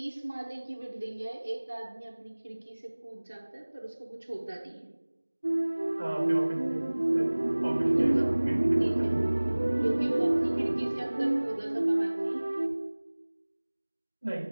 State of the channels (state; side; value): inverted; both; correlation -1.00